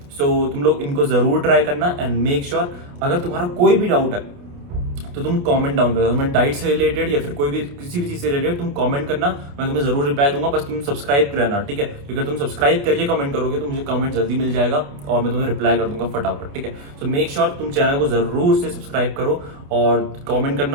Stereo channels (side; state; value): left; late; 28 ms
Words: सो तुम लोग इनको जरूर ट्राई करना एंड मेक श्योर अगर तुम्हारा कोई भी डाउट है तो तुम कमेंट डाउन कर दो। तुम्हें डाइट से रिलेटेड या फिर कोई भी किसी भी चीज से रिलेटेड तुम कमेंट करना, मैं तुम्हें जरूर रिप्लाई दूंगा। बस तुम सब्सक्राइब करना, ठीक है, क्योंकि अगर तुम सब्सक्राइब करके कमेंट करोगे तो मुझे कमेंट जल्दी मिल जाएगा और मैं तुम्हें रिप्लाई कर दूंगा फटाफट, ठीक है। सो मेक श्योर तुम चैनल को जरूर से सब्सक्राइब करो और कमेंट